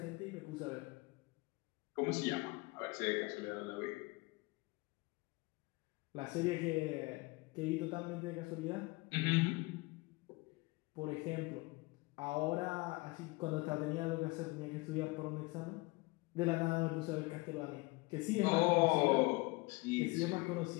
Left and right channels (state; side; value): quieter; right; 23.9 dB